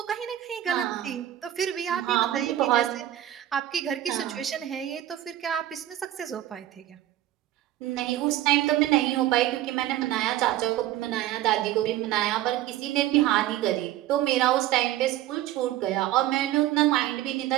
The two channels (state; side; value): quieter; left; 13.4 dB